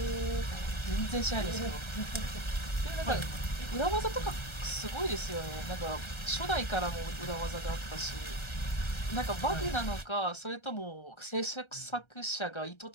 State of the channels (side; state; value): right; late; 1.3 ms